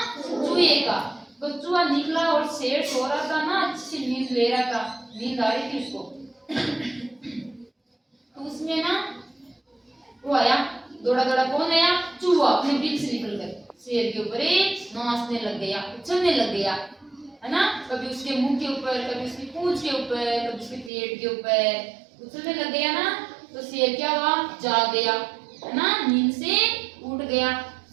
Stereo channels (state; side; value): drops out; left; at 20.9 s